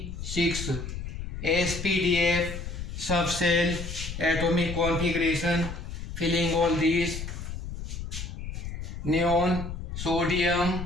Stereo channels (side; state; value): left; noise; rumble, 7 dB below the sound